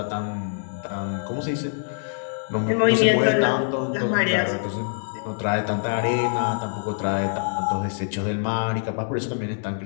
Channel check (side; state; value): right; silent; digital silence